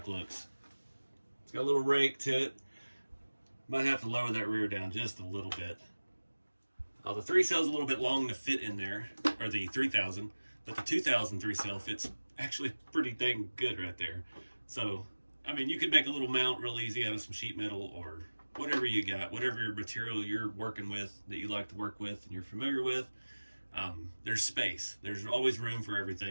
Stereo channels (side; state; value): both; inverted; correlation -1.00